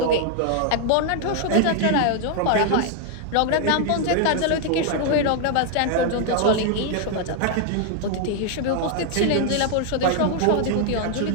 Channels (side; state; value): both; different; correlation 0.00